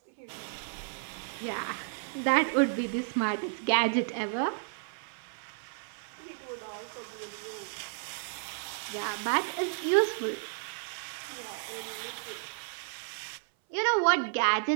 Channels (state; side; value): silent; left; 56 dB below the other